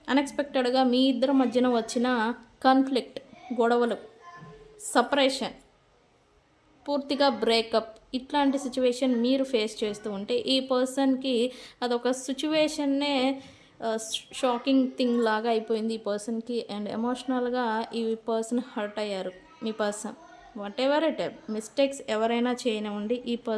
అన్ఎక్స్పెక్టెడ్గా మీ ఇద్దరి మధ్యన వచ్చిన కాన్ఫ్లిక్ట్, గొడవలు, సపరేషన్ పూర్తిగా బ్రేకప్ ఇట్లాంటి సిచ్యువేషన్ మీరు ఫేస్ చేస్తూ ఉంటే ఈ పర్సన్కి అదొక సిచ్యువేషన్నే షాకింగ్ థింగ్ లాగా అయిపోయింది ఈ పర్సన్కి. అండ్ ఎమోషనల్గా ఈ పర్సన్ హర్ట్ అయ్యారు. మీ person whatever it mistakes ఎవరైనా చేయనివ్వండి, ఈ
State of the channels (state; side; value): identical; both; correlation 1.00